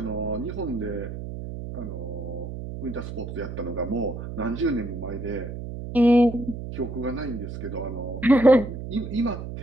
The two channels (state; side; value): noise; right; hum, 8 dB below the sound